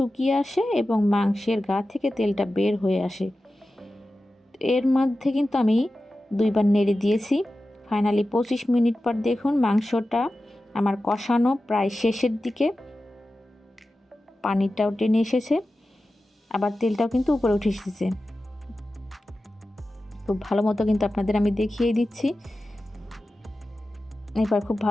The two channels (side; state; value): both; normal; correlation 0.94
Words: আসে এবং মাংসের গা থেকে তেলটা বের হয়ে আসে। এর মধ্যে কিন্তু আমি 2 বার নেড়ে দিয়েছি। ফাইনালি 25 মিনিট পর দেখুন, মাংসটা আমার কষানো প্রায় শেষের দিকে, পানিটাও টেনে এসেছে, আবার তেলটাও কিন্তু উপরে উঠে এসেছে। খুব ভালো মতো কিন্তু আপনাদের আমি দেখিয়ে দিচ্ছি। এবার খুব